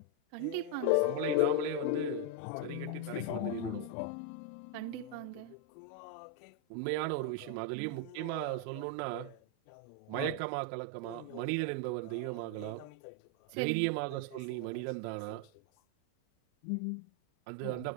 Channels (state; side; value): different; both; correlation 0.01